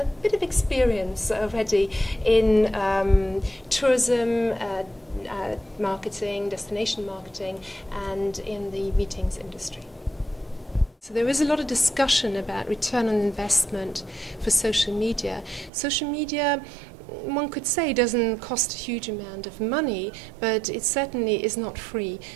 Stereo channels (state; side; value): drops out; left; at 15.7 s